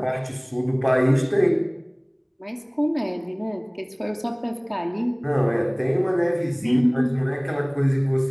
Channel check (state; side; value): identical; both; correlation 1.00